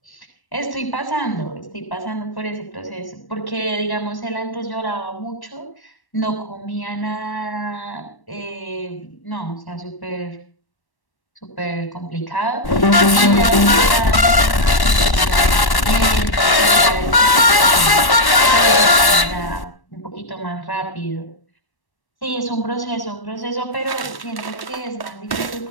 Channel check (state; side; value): late; right; 1.1 ms